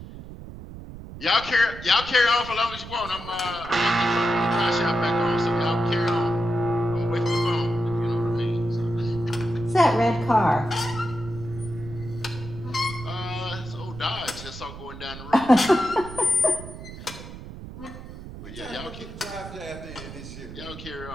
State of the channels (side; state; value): right; noise; rumble, 13 dB below the sound